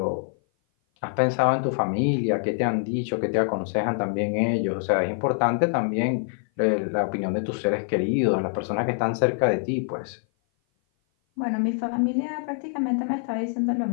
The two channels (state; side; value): silent; right; 56 dB below the other